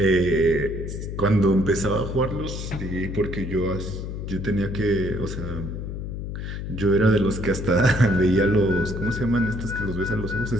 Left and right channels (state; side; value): noise; left; hum, 6 dB below the sound